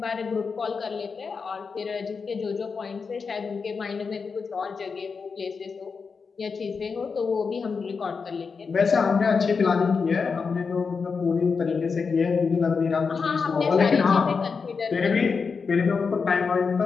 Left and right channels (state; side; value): quieter; right; 5.2 dB